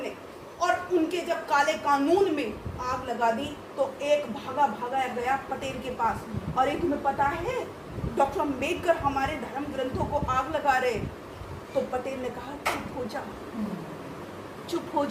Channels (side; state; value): both; identical; correlation 1.00